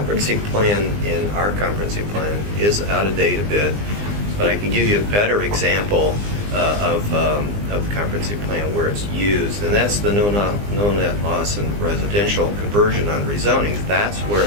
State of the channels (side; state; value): left; late; 20 ms